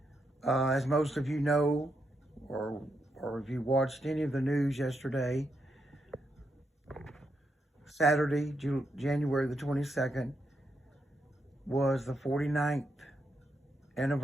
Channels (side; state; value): both; normal; correlation 0.81